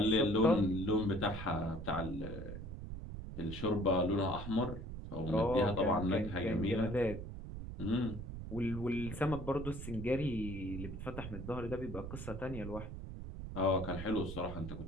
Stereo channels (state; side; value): noise; right; rumble, 8 dB below the sound